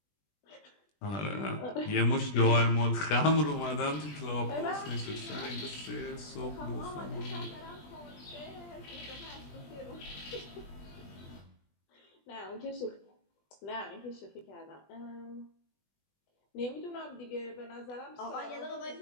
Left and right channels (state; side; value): late; right; 20 ms